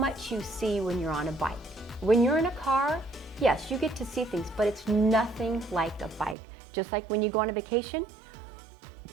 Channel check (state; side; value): drops out; left; at 6.4 s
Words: you see when you're on a bike. When you're in a car, yes, you get to see things, but it's nothing like a bike. Just like when you go on a vacation,